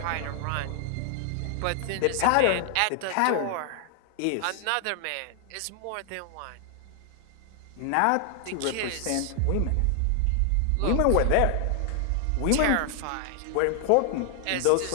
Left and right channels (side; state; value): both; different; correlation 0.00